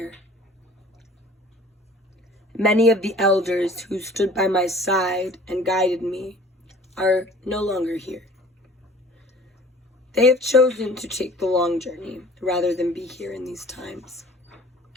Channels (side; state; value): both; normal; correlation 0.49